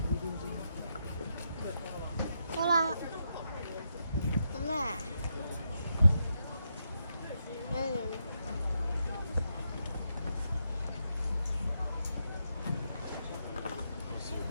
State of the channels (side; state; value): both; inverted; correlation -0.83